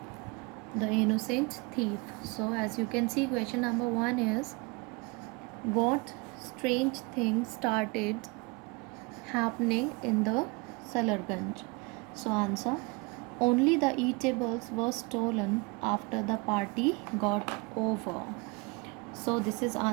The Innocent Thief. So, as you can see, question number 1 is, what strange thing started happening in the Salarganj? So, answer, only the eatables were stolen after the party got over. So, this is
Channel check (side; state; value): left; quieter; 27.7 dB